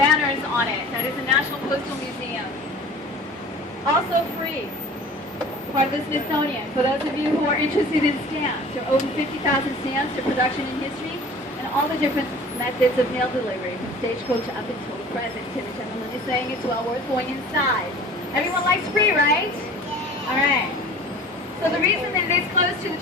on it. That is the National Postal Museum. Also free. Part of the Smithsonian. For those of you who are interested in stamps, there are over 50,000 stamps for production in history, and all the different methods of mail delivery, from stagecoach up until the present. And the gentleman is saying it's well worth going inside. Everyone likes free, right? Yeah. All right. So the reason that it is close to the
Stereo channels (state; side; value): normal; both; correlation 0.44